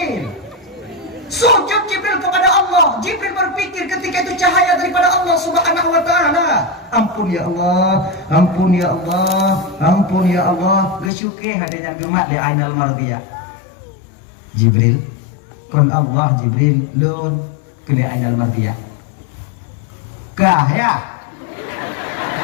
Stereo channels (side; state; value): right; drops out; at 11.1 s